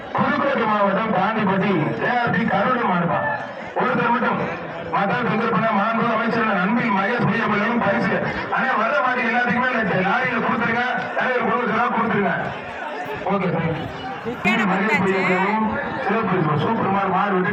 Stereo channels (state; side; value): identical; both; correlation 1.00